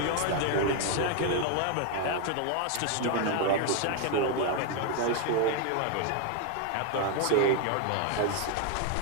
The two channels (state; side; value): different; both; correlation 0.01